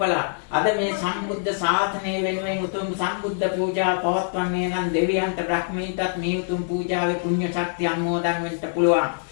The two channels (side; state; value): right; silent; 63 dB below the other